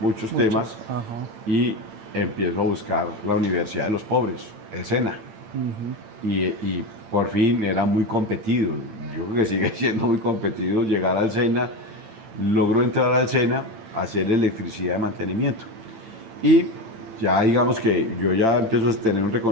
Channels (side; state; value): left; late; 8.9 ms